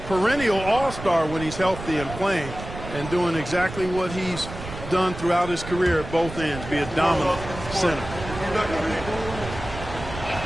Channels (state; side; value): noise; right; rumble, 10 dB below the sound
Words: perennial all-star when he's healthy and playing and doing exactly what he's done throughout his career at both ends, be a dominant center.